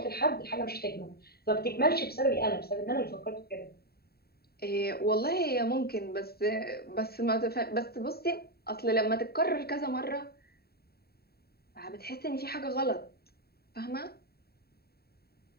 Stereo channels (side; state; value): right; late; 0.45 ms